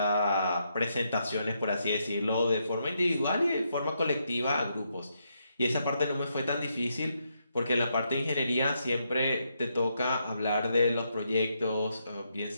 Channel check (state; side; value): inverted; both; correlation -0.79